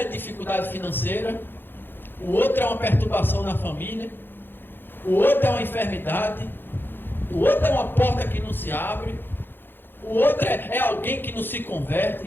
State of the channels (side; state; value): right; late; 0.099 ms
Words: dificuldade financeira, o outro é uma perturbação na família, o outro é uma enfermidade, o outro é uma porta que não se abre, o outro é alguém que não se converte